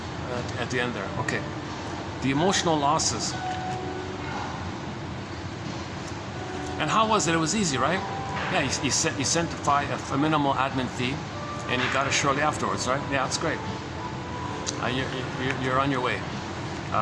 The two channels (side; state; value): both; identical; correlation 1.00